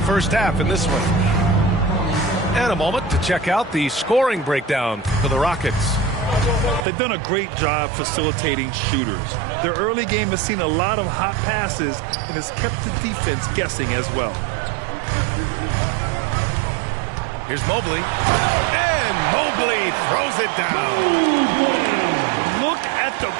half in this one. And a moment to check out the scoring breakdown for the Rockets. They've done a great job facilitating shooters. Their early game has seen a lot of hot passes and has kept the defense guessing as well. Here's Mobley. And Mobley throws it down. Look at the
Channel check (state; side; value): drops out; left; at 6.9 s